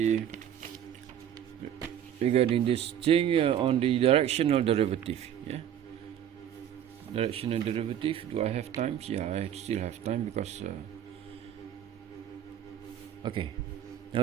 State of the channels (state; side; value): quieter; left; 10.1 dB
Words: regarding this thing on the directional derivative. Yeah, directional derivative. Do I have time? Yeah, I still have time because. Okay. Now